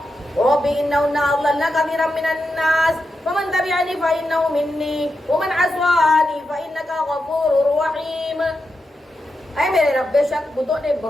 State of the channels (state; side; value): normal; both; correlation 0.87